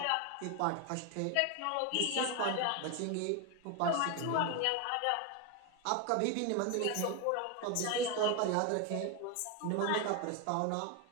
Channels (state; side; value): different; both; correlation 0.02